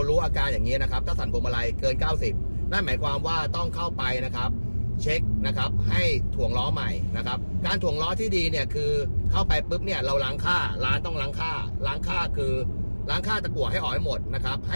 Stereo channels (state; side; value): inverted; both; correlation -1.00